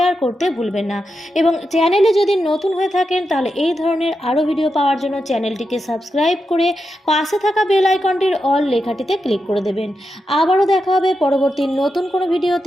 করতে ভুলবেন না এবং চ্যানেলে যদি নতুন হয়ে থাকেন তাহলে এই ধরনের আরও ভিডিও পাওয়ার জন্য চ্যানেলটিকে সাবস্ক্রাইব করে পাশে থাকা বেল আইকনটির অল লেখাটিতে ক্লিক করে দেবেন। আবারও দেখা হবে পরবর্তী নতুন কোনো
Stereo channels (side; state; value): both; normal; correlation 0.87